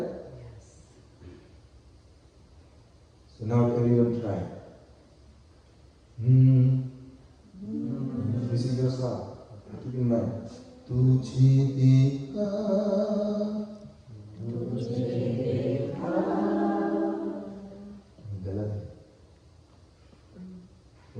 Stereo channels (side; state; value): both; identical; correlation 1.00